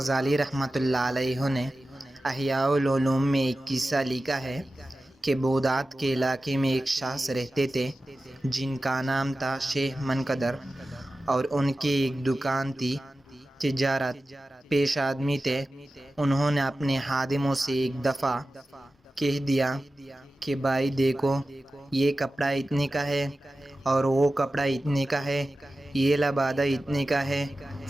رحمۃ اللہ علیہ نے احیاء العلوم میں ایک قصہ لکھا ہے کہ بغداد کے علاقے میں ایک شخص رہتے تھے جن کا نام تھا شیخ منقدر، اور ان کی ایک دکان تھی، تجارت پیش آدمی تھے۔ انہوں نے اپنے خادموں سے ایک دفعہ کہہ دیا کہ بھائی دیکھو، یہ کپڑا اتنے کا ہے اور وہ کپڑا اتنے کا ہے، یہ لبادہ اتنے کا ہے،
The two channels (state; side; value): normal; both; correlation 0.94